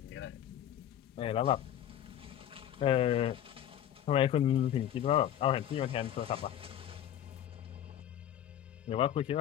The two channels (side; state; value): right; quieter; 10.9 dB